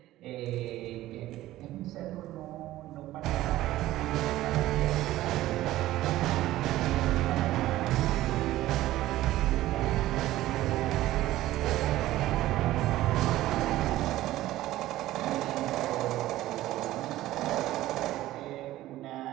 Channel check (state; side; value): quieter; left; 15.4 dB